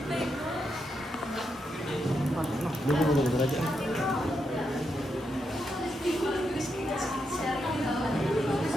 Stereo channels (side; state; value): both; normal; correlation 0.83